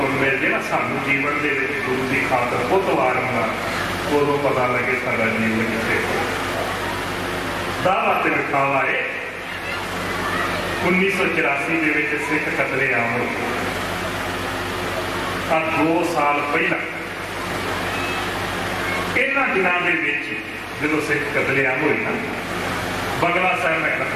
ਮਿਲ ਜੇ ਨਾ ਸਾਨੂੰ ਜੀਵਨ ਦੇ ਵਿੱਚ ਗੁਰੂ ਦੀ ਖਾਤਰ ਬਹੁਤ ਵਾਰ ਹੁੰਦਾ, ਉਦੋਂ ਪਤਾ ਲੱਗੇ ਸਾਡਾ ਜੀਵਨ ਕਿੱਥੇ ਦਾਵਾ ਤੇ ਵਿਖਾਵਾ ਹੈ। 1984 ਦੇ ਵਿੱਚ ਸਿੱਖ ਕਤਲੇਆਮ ਹੋਏ। 2 ਸਾਲ ਪਹਿਲਾਂ ਇਹਨਾਂ ਦਿਨਾਂ ਦੇ ਵਿੱਚ ਜਦੋਂ ਸਿੱਖ ਕਤਲੇਆਮ ਹੋਈ ਨਾ, ਬੰਗਲਾ ਸਾਹਿਬ ਮੈਂ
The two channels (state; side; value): identical; both; correlation 1.00